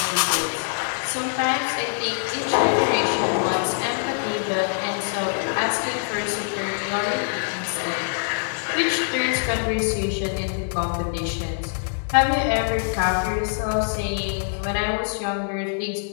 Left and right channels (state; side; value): silent; right; 62 dB below the other